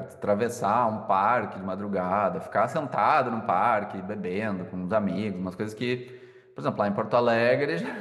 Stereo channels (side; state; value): both; identical; correlation 1.00